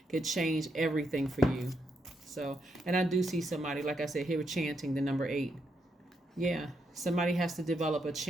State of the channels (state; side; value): normal; both; correlation 0.80